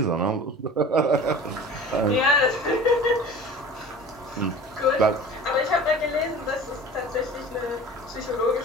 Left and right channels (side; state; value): both; normal; correlation 0.39